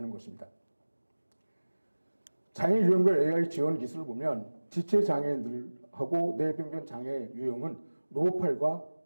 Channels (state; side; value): inverted; both; correlation -1.00